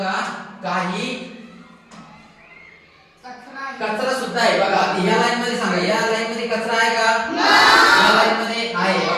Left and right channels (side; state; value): both; identical; correlation 1.00